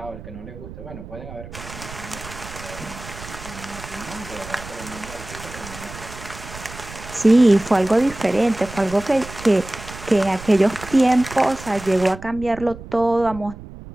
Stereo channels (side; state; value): right; noise; rumble, 14 dB below the sound